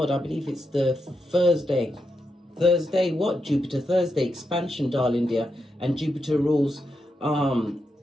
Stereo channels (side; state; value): both; normal; correlation 0.85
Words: I believe it's the Thursday, what? Jupiter Thursday, expansion, darling dear. And Jupiter rules